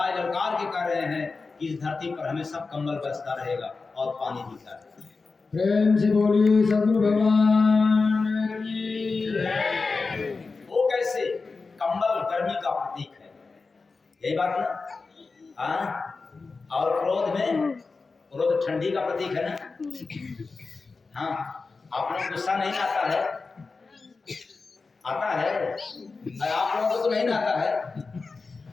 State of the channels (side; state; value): right; quieter; 4.2 dB